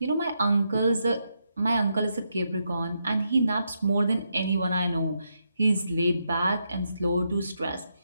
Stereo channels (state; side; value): inverted; both; correlation -0.82